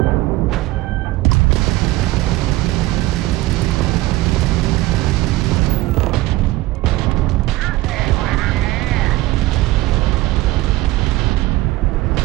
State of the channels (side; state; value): left; quieter; 18.4 dB